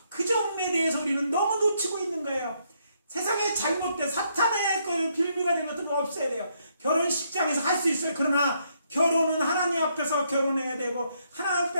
그 점에 대해서 우리는 너무 놓치고 있는 거예요. 세상에 잘못된 사탄의 그 빌미가 된 것들은 없애야 돼요. 결혼식장에서 할 수 있어요. 그러나 결혼은 하나님 앞에서 결혼해야 되고 하나님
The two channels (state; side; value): inverted; both; correlation -0.74